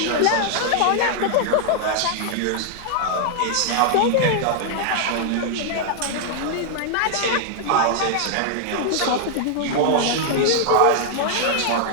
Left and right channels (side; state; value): both; different; correlation 0.00